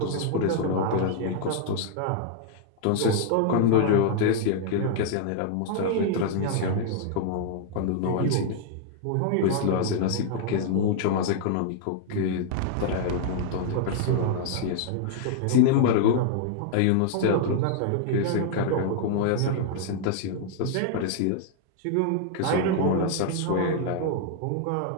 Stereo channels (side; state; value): both; different; correlation -0.01